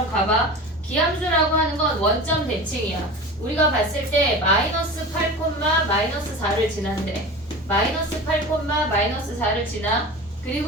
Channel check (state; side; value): normal; both; correlation 0.33